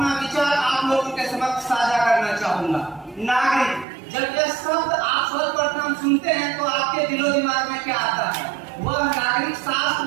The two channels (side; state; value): left; drops out; at 3.9 s